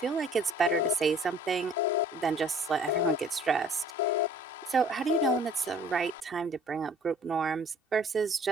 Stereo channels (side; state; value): both; normal; correlation 0.53